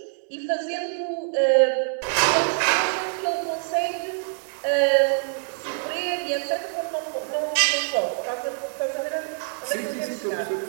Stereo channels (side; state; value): left; silent; digital silence